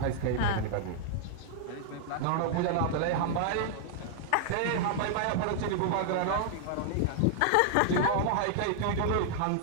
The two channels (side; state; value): both; different; correlation -0.01